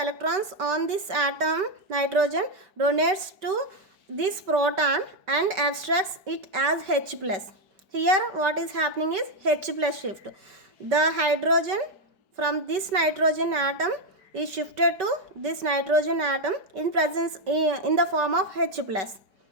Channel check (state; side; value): late; left; 5.2 ms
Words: on this atom nitrogen donates to this proton and abstracts it as H plus. Here what is happening is H plus shift. The hydrogen from this nitrogen atom is shifted to this nitrogen atom in the form of H plus.